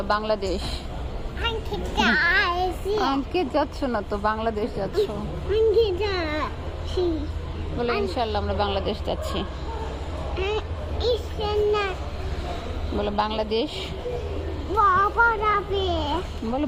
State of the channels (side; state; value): both; identical; correlation 1.00